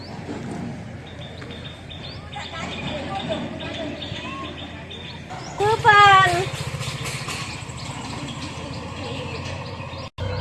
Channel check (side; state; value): both; identical; correlation 1.00